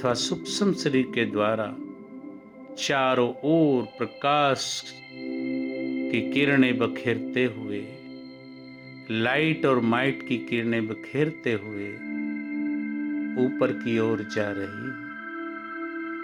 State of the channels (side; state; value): both; identical; correlation 1.00